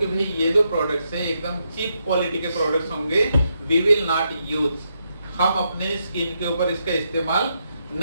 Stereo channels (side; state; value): both; inverted; correlation -0.80